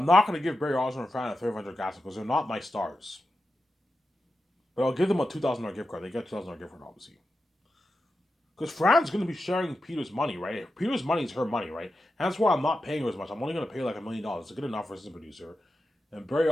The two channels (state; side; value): normal; both; correlation 0.90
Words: not going to give Barry Osmond and Fran a $300 gas because they're not my stars. But I'll give them a $2,000 gift card. They get a $2,000 gift card, obviously. Because Fran's going to be sharing Peter's money, right? Peter's money is her money, right? And that's why I'm not paying her as much. I'm only going to pay like $1 million. It's good enough for assistant producer. And Barry